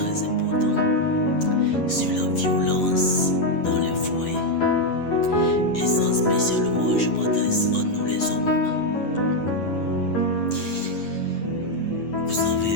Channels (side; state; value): right; late; 9.8 ms